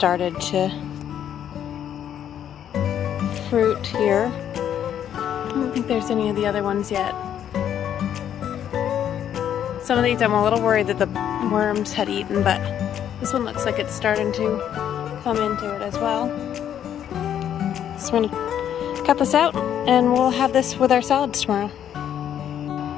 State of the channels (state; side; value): quieter; right; 9.9 dB